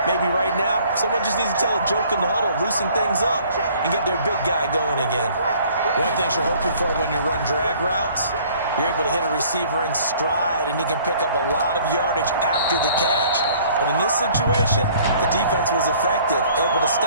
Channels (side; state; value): both; inverted; correlation -0.56